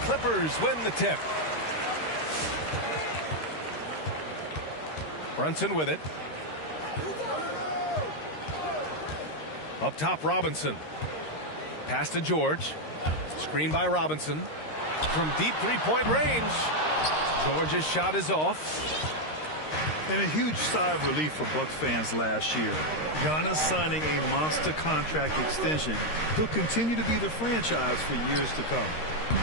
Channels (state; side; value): late; right; 13 ms